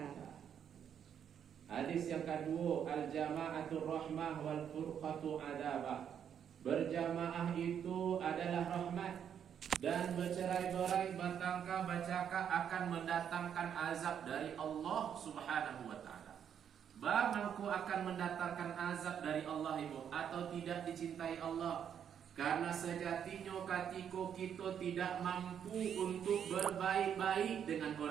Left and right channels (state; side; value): quieter; left; 8.5 dB